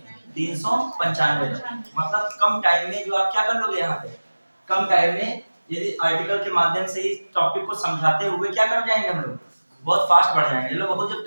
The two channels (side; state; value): both; inverted; correlation -1.00